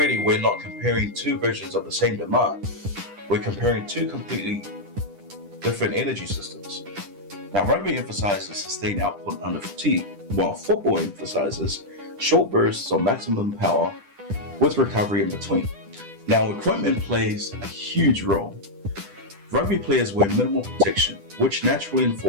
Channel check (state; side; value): late; left; 10 ms